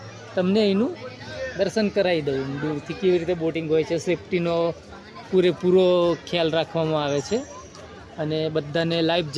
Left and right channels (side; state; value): both; identical; correlation 1.00